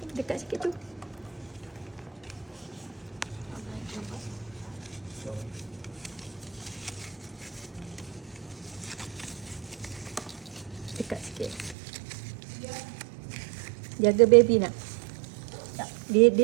Dekat sikit tu. Dekat sikit. Jaga baby nak. Dia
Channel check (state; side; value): drops out; left; at 11.8 s